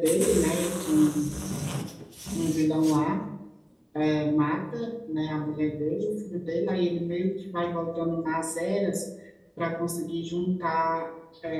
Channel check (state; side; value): identical; both; correlation 1.00